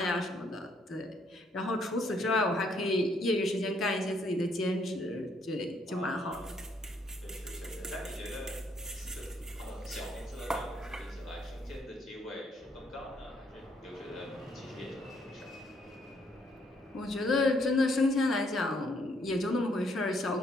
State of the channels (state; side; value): normal; both; correlation 0.70